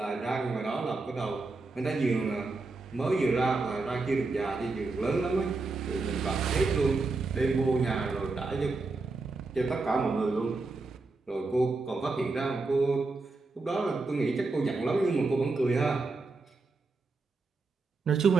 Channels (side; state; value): left; quieter; 3.7 dB